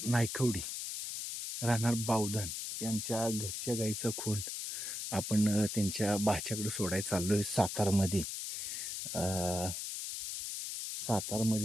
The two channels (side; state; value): left; noise; hiss, 4 dB below the sound